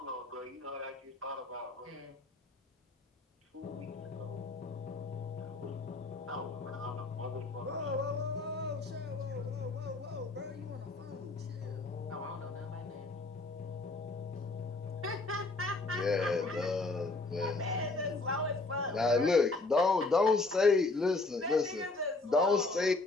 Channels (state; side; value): quieter; right; 3.3 dB